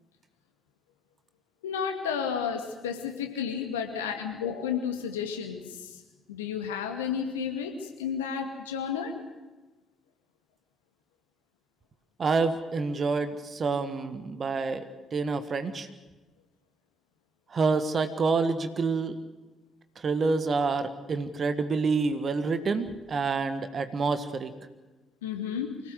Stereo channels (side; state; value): both; normal; correlation 0.62